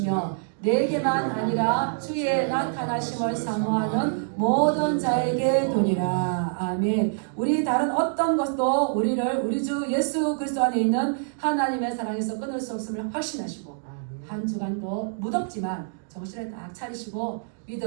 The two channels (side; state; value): left; silent; digital silence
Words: 내게만 아니라 주의 나타나심을 사모하는 모든 자에게 도니라. 아멘. 우리 다른 어떤 것도 우리를 우리 주 예수 그리스도 안에 있는 하나님의 사랑에서 끊을 수 없음을 확신하시고 한 주간도 무덥지만 정신을 딱 차리시고